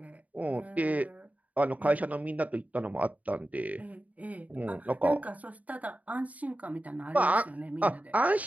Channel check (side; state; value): left; late; 0.072 ms